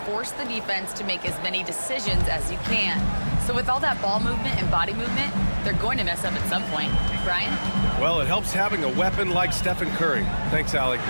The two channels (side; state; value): both; inverted; correlation -1.00